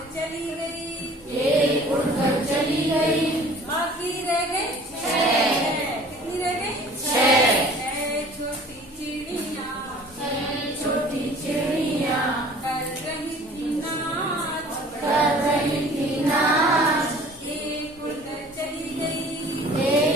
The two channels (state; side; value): normal; both; correlation 0.48